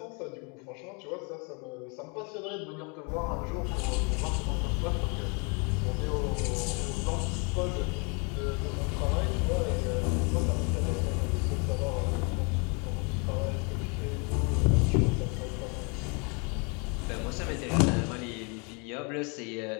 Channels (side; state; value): right; quieter; 33.4 dB